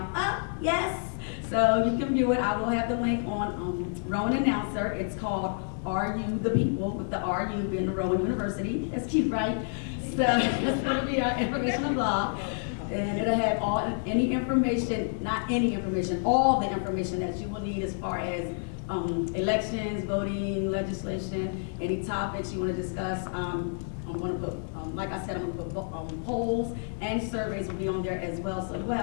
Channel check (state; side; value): silent; right; digital silence